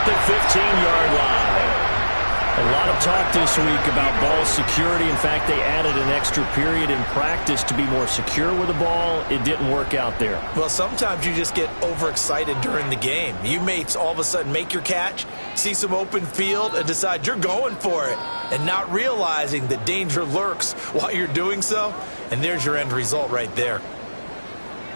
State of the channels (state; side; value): inverted; both; correlation -1.00